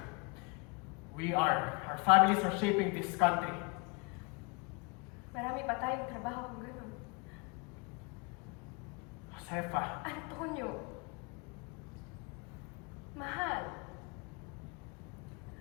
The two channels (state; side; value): quieter; right; 30.9 dB